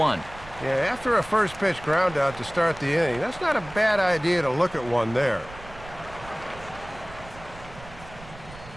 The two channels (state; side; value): noise; right; rumble, 17 dB below the sound